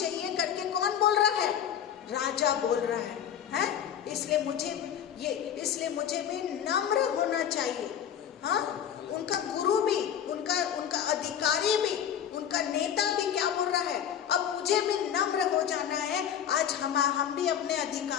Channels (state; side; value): quieter; right; 9.2 dB